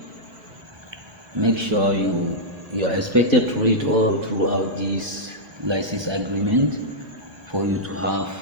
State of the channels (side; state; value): left; late; 1.2 ms